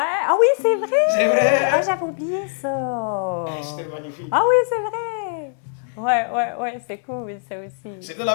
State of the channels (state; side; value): silent; right; 61 dB below the other